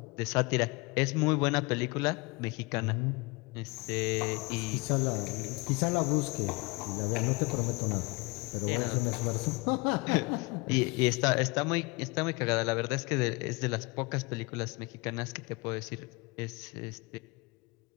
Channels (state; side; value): quieter; right; 26.3 dB